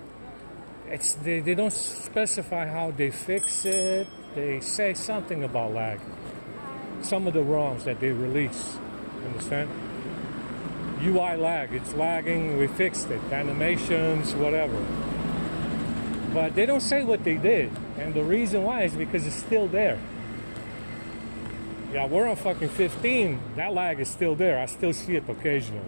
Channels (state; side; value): inverted; both; correlation -1.00